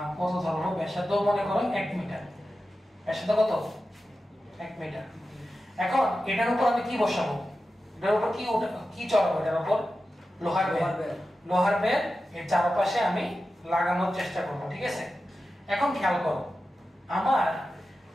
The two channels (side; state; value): both; normal; correlation 0.92